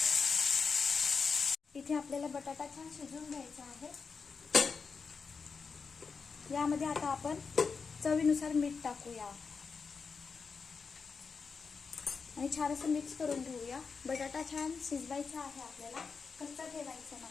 इथे आपल्याला बटाटा छान शिजवून घ्यायचा आहे। यामध्ये आता आपण चवीनुसार मीठ टाकूया आणि छान असं मिक्स करून घेऊया। बटाटा छान शिजवायचा आहे आपल्याला, कच्चा ठेवायचा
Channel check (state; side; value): quieter; right; 5.2 dB